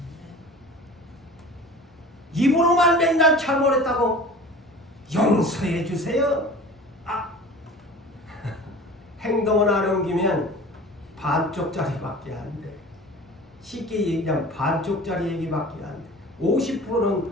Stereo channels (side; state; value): both; normal; correlation 0.40